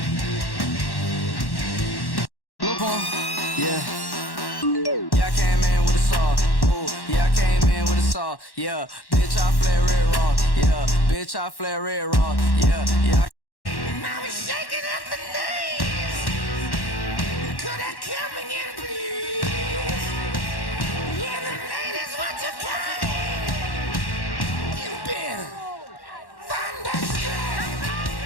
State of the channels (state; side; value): late; right; 1.1 ms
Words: Look on, yeah. Yeah, I came in with a saw. Ooh, yeah, I came in with a saw. Yeah, bitch, I flare red raw. Yeah, bitch, I flare red raw. Yeah, yeah. I was shaking at the knees. Could I come again, please? Yeah, the ladies want to come. You better thunderstruck.